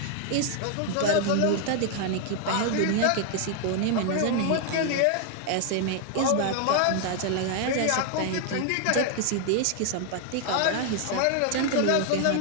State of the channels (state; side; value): different; both; correlation 0.00